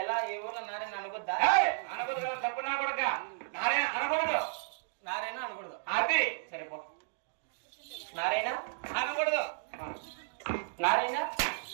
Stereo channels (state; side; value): silent; left; digital silence